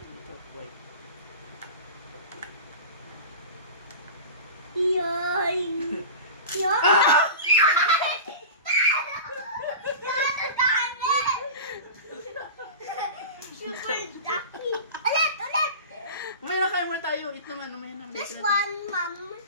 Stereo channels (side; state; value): both; inverted; correlation -0.32